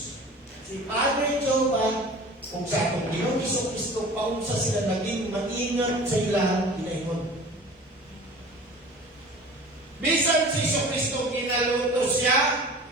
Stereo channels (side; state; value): both; normal; correlation 0.41